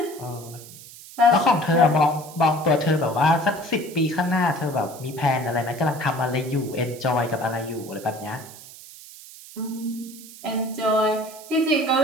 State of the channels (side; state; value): right; noise; hiss, 17 dB below the sound